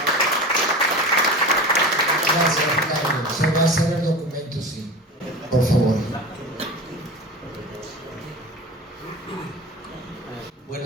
Gracias, Carlos. Se va a hacer el documento, sí. Por favor.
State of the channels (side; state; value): both; normal; correlation 0.31